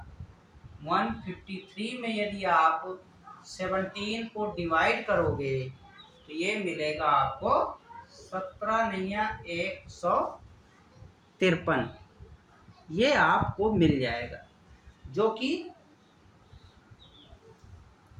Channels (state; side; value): identical; both; correlation 1.00